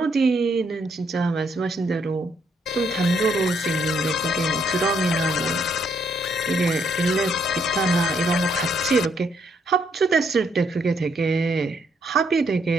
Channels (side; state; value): both; normal; correlation 0.73